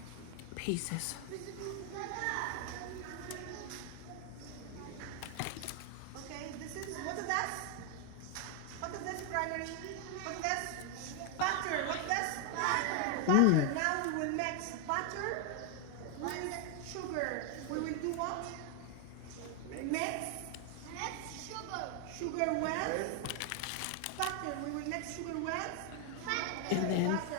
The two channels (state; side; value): different; both; correlation 0.00